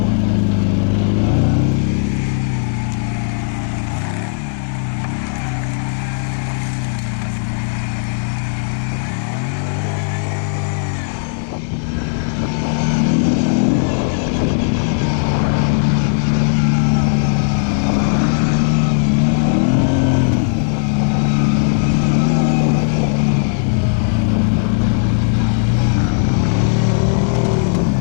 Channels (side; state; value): right; silent; digital silence